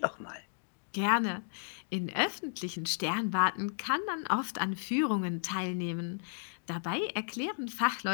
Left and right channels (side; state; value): right; silent; digital silence